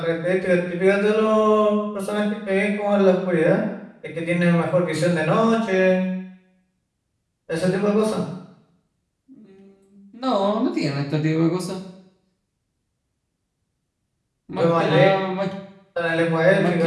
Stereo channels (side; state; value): both; identical; correlation 1.00